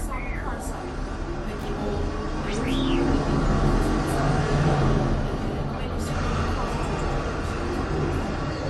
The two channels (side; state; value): both; identical; correlation 1.00